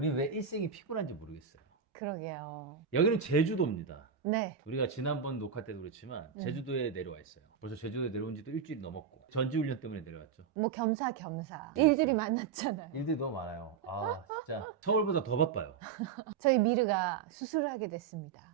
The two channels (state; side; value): quieter; left; 6.9 dB